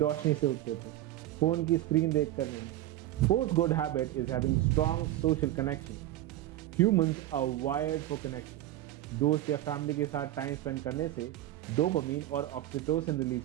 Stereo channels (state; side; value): quieter; left; 14.2 dB